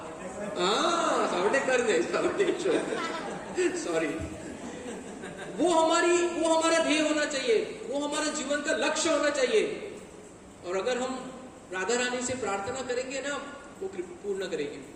सावरडेव कर गए, सावरडेश्वर सॉरी। वो हमारा ध्येय होना चाहिए, वो हमारा जीवन का लक्ष्य होना चाहिए। और अगर हम राधा रानी से प्रार्थना करेंगे ना, वो पूर्ण करेंगे,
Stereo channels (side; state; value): both; identical; correlation 1.00